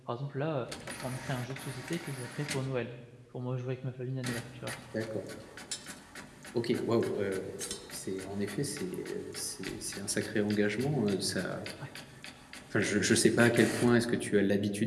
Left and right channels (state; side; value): identical; both; correlation 1.00